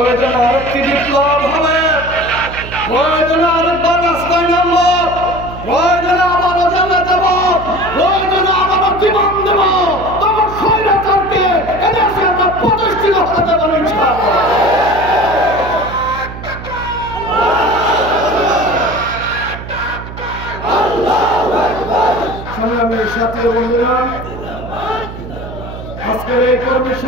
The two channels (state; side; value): noise; right; hum, 11 dB below the sound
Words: আরেকটি বিপ্লব হবে, প্রয়োজনে আরেকবার রাস্তায় নামব, প্রয়োজনে আবারও জেলে যাব, প্রয়োজনে আবারও জীবন দেব, তবে স্বৈরাচারকে এদেশে আমরা প্রতিষ্ঠিত হতে দেব না ইনশাআল্লাহ। সংগ্রামের সাথী বন্ধুরা, আজকের এই কর্মী